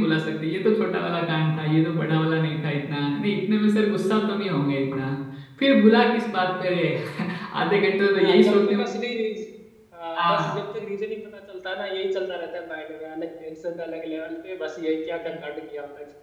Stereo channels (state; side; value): identical; both; correlation 1.00